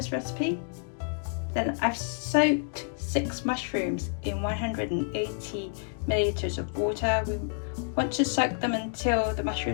recipe. Then I've soaked 6 mushrooms in 180 milliliters of water. We want to soak them until the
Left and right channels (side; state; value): right; silent; 59 dB below the other